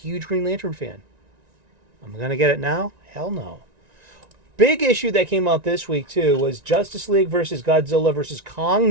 Green Lantern fan. I'm gonna get it now? Hell no. Big issue that came out this week too was Justice League versus Godzilla versus Kong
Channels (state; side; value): late; left; 1.9 ms